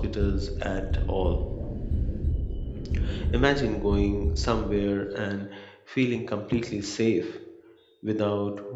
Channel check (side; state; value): both; identical; correlation 1.00